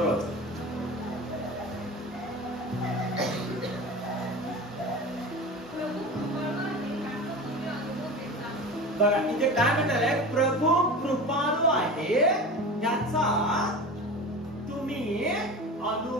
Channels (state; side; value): normal; both; correlation 0.32